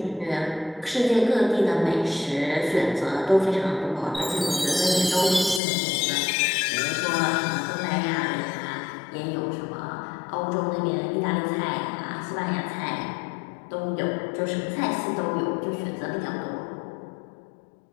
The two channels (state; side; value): drops out; right; at 5.6 s